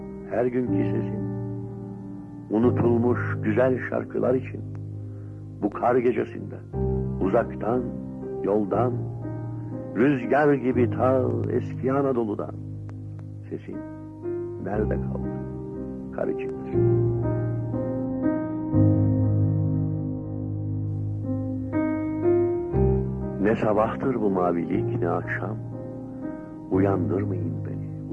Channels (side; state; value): both; identical; correlation 1.00